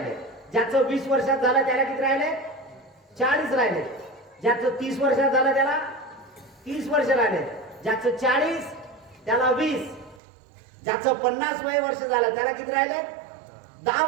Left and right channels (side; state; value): left; drops out; at 10.2 s